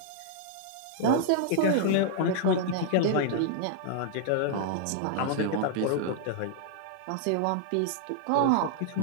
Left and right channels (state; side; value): different; both; correlation -0.01